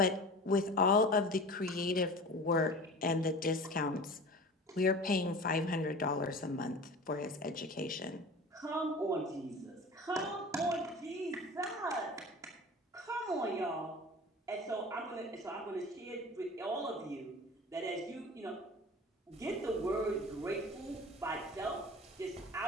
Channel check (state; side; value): normal; both; correlation 0.37